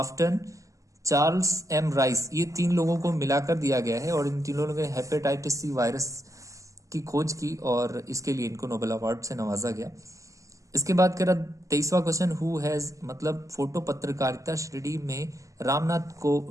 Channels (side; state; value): left; late; 0.16 ms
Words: Charles M Rice, ये 3 लोगों को मिलाकर दिया गया है और इन तीनों लोगों ने हेपेटाइटिस सी वायरस की खोज की और इसके लिए इनको नोबेल अवार्ड से नवाजा गया। इसके बाद कह रहा 23वां क्वेश्चन, हु हैज, मतलब फोटो पत्रकारिता श्रेणी में